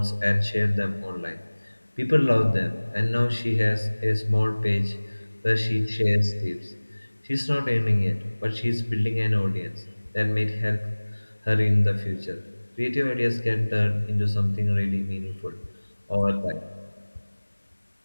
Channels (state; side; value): inverted; both; correlation -1.00